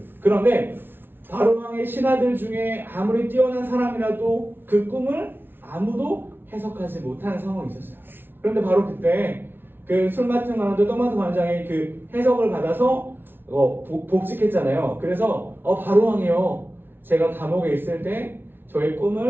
그런데 바로 왕의 신하들 중에 아무리 뛰어난 사람이라도 그 꿈을 아무도 해석하지 못하는 상황이 있었어요. 그런데 바로 그때 그 술 맡은 관원도 떡 맡은 관원장이 그 해석을 받아서 복직했잖아요. 그래서 바로 왕이요, 제가 감옥에 있을 때 저의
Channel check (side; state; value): left; late; 0.10 ms